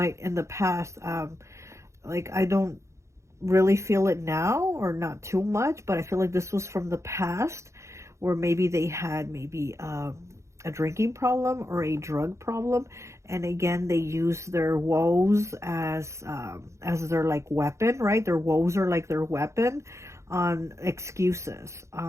in the past, like I don't really feel it now or not too much, but I feel like this was from the past where maybe they had maybe a drinking problem or a drug problem. And again, they use their woes as their like weapon, right? Their woes are like their weapon on excuses,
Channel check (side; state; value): left; late; 0.14 ms